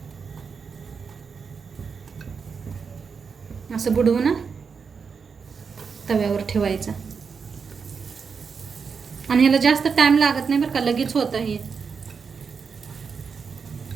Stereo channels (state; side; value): quieter; left; 5.7 dB